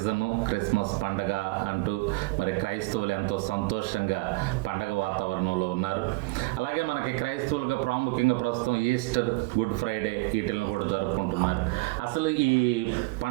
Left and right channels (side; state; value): left; quieter; 22.9 dB